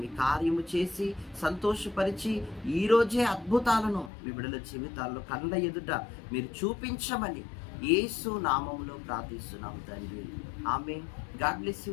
మీ కార్యము చేసి సంతోషపరిచి ఈరోజే అద్భుతాలను మీ బిడ్డల జీవితాల్లో కళ్ళ ఎదుట మీరు చూపించమని యేసు నామములో ప్రార్థిస్తున్నాము తండ్రి. ఆమేన్. God bless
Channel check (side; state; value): right; drops out; at 4.1 s